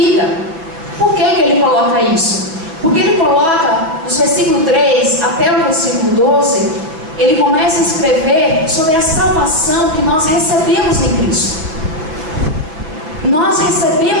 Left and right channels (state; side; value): late; left; 6.2 ms